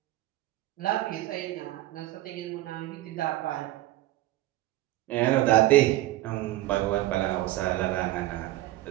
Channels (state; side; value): quieter; left; 16.2 dB